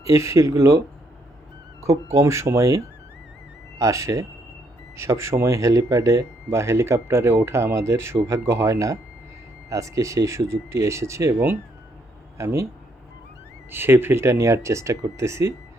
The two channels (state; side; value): normal; both; correlation 0.72